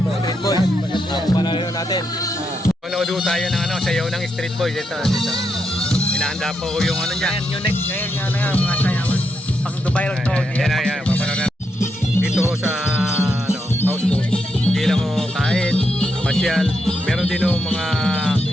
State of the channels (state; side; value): normal; both; correlation 0.82